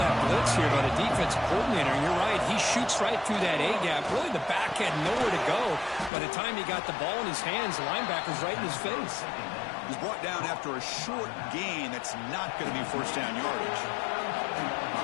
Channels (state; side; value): drops out; right; at 6.1 s